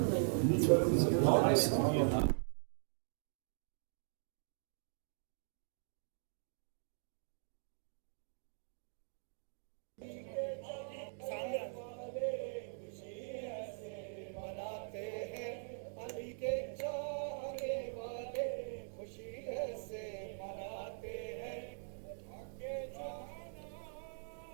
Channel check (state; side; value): silent; left; digital silence